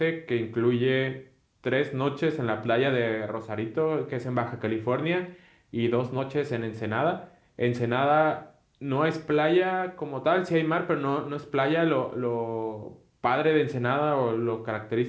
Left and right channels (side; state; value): both; identical; correlation 1.00